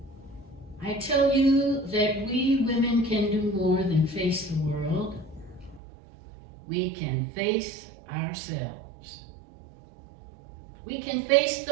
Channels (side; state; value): left; drops out; at 5.8 s